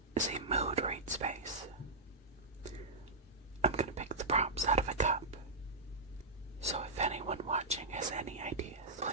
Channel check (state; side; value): quieter; left; 3.1 dB